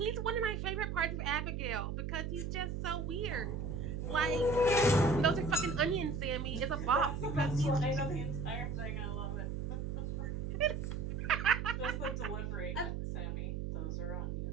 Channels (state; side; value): noise; right; hum, 3 dB below the sound